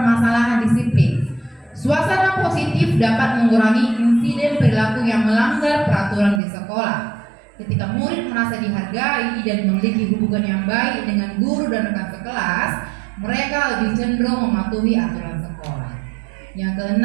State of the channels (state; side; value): drops out; left; at 6.4 s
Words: disiplin. Suasana positif dapat mengurangi insiden perilaku yang melanggar peraturan di sekolah. Ketika murid merasa dihargai dan memiliki hubungan yang baik dengan guru dan rekan sekelas, mereka lebih cenderung mematuhi aturan sekolah. Yang